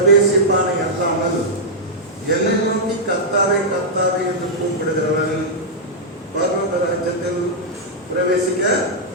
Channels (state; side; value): normal; both; correlation -0.08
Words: அல்லாமல் என்னை நோக்கி கர்த்தாவே கர்த்தாவே என்று கூப்பிடுகிறவன் பரலோக ராஜ்யத்தில் பிரவேசிக்க